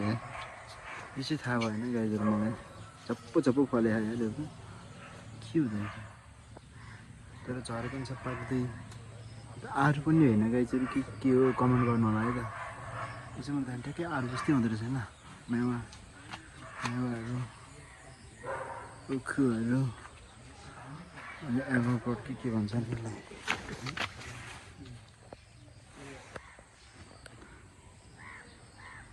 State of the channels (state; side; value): identical; both; correlation 1.00